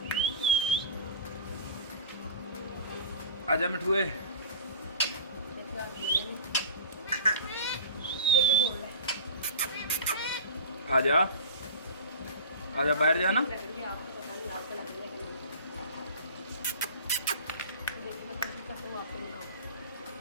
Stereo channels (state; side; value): inverted; both; correlation -0.36